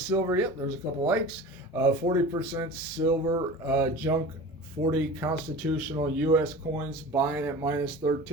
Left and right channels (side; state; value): both; normal; correlation 0.36